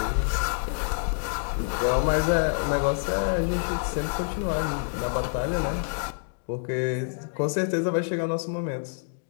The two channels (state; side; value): silent; right; digital silence